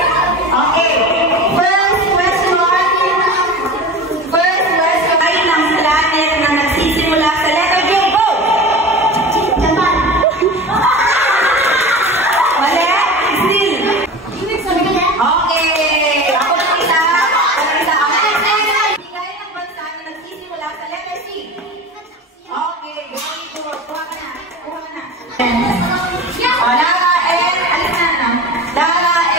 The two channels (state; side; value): normal; both; correlation 0.32